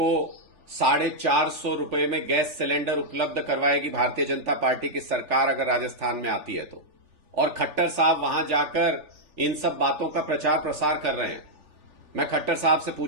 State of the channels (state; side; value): late; left; 3.4 ms